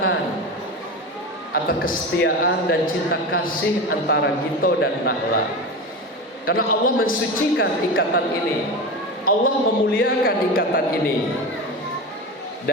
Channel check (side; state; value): both; normal; correlation 0.24